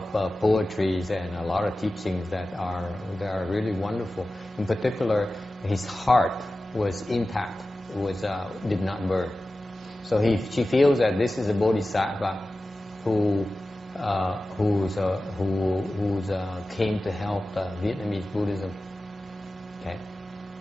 poetries and a lot of teachings that are really wonderful. In particular, his heart was intact, did not burn. So she feels that this is a bodhisattva who came to help Vietnamese Buddhism. Okay.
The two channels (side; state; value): both; normal; correlation 0.95